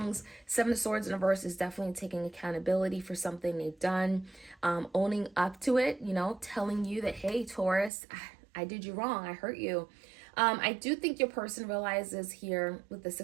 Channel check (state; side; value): drops out; left; at 7.9 s